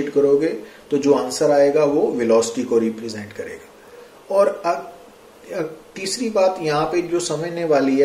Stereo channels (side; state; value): both; identical; correlation 1.00